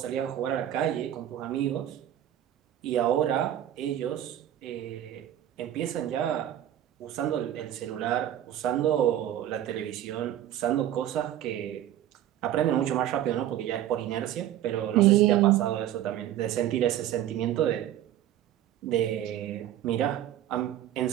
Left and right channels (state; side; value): quieter; left; 11.9 dB